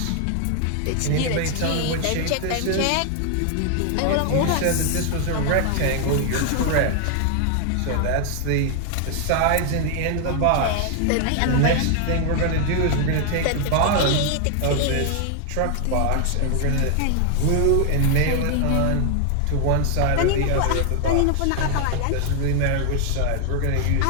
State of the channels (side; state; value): both; different; correlation 0.00